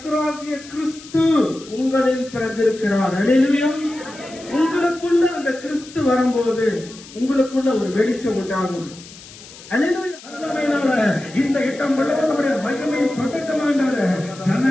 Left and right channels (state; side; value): noise; left; hiss, 18 dB below the sound